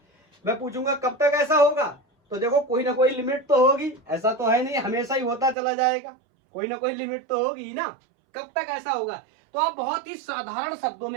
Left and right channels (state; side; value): drops out; left; at 5.6 s